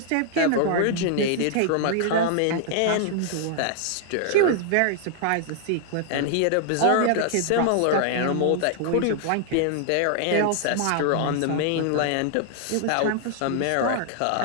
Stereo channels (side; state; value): both; different; correlation 0.00